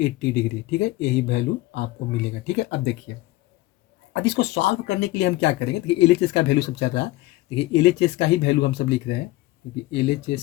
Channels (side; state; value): right; quieter; 18.4 dB